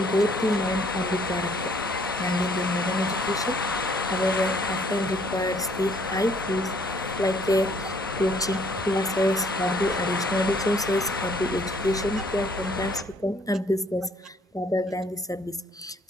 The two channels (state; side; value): normal; both; correlation 0.63